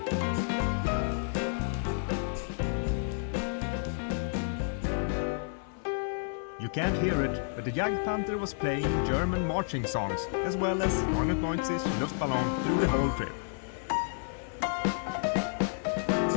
You can't hear it, but the Jagdpanther was playing German marching songs as well as 99 Luftballon through the whole trip.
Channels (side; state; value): right; silent; 57 dB below the other